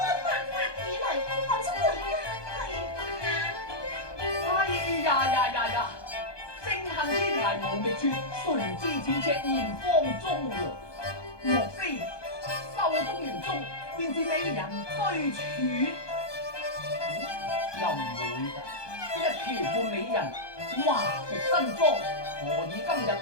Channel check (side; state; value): right; late; 1.2 ms